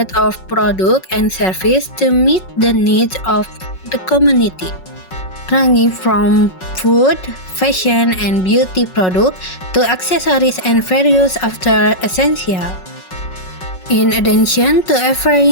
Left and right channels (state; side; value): late; right; 5.4 ms